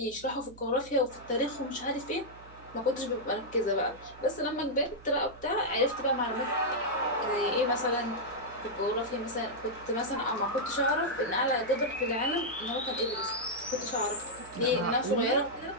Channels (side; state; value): right; noise; hum, 20 dB below the sound